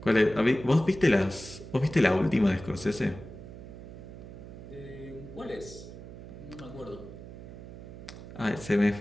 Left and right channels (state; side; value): noise; right; hum, 13 dB below the sound